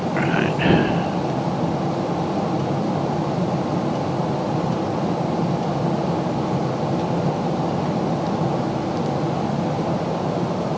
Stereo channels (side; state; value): both; identical; correlation 1.00